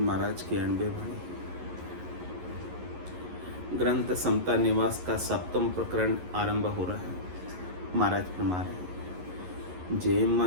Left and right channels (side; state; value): left; late; 11 ms